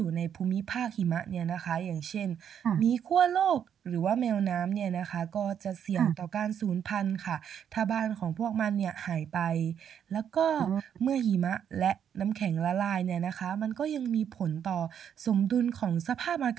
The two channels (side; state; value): left; quieter; 8.7 dB